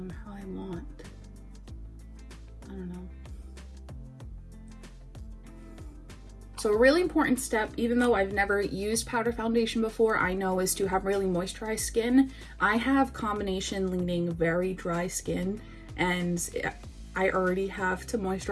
how I want. I don't know. So a really important step, even though I've never used powder foundation before, I know is to have really moisturized skin. I have combination leaning very dry skin and I already have to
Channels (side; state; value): both; identical; correlation 1.00